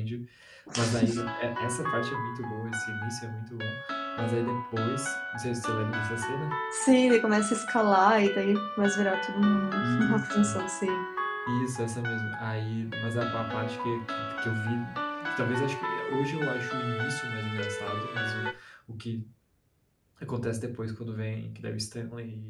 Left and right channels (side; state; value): both; identical; correlation 1.00